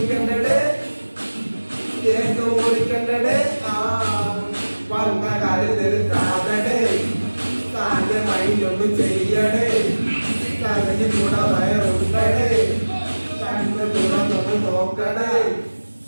കേക്ക് പൊളിക്കണ്ടേ, വന്ന കാര്യം നിർത്താതടേ, താന്റെ മൈൻഡൊന്നും ചെയ്യടേ, തകഞ്ഞു കൂടെ വയറുണ്ടടേ, കണ്ണ് തുറന്നൊന്ന് നോക്കണേ,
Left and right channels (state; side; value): inverted; both; correlation -1.00